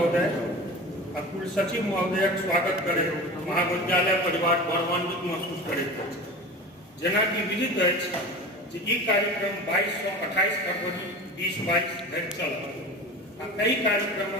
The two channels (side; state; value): both; normal; correlation 0.33